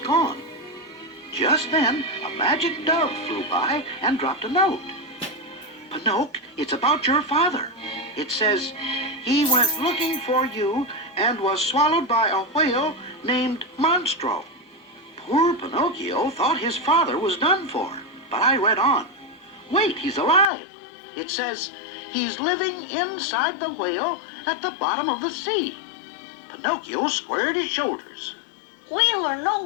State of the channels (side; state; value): right; drops out; at 20.5 s